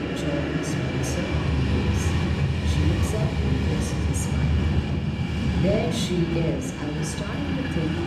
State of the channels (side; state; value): both; identical; correlation 1.00